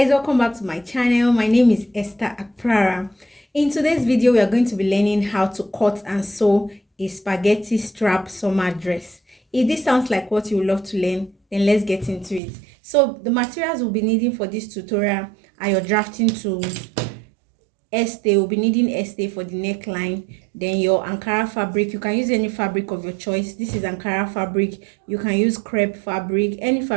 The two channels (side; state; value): left; drops out; at 12.4 s